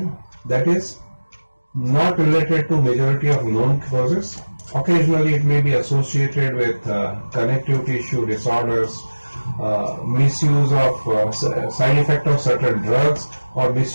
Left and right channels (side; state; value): both; inverted; correlation -1.00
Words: that is not related to majority of known causes. Occasionally it may be associated with connective tissue disorders, misuse of side effect of certain drugs, or